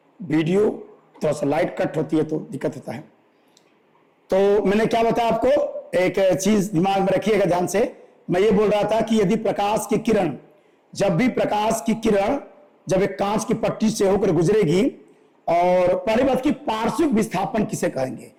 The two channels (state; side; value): identical; both; correlation 1.00